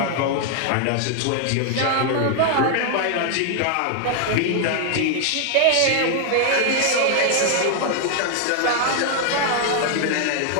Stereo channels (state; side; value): different; both; correlation 0.00